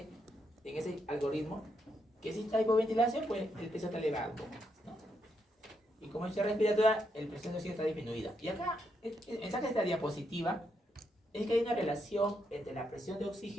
en ese algoritmo que si está hipoventilación, pues el peso está elevado un poco más, ¿no? Y como es respiratoria, el presión de oxígeno está disminuida. Y acá, el mensaje de esta diapositiva es que hay una relación entre la presión de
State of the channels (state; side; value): normal; both; correlation 0.79